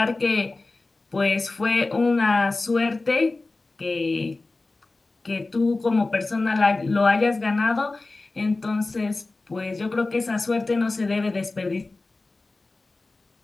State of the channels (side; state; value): right; quieter; 3.3 dB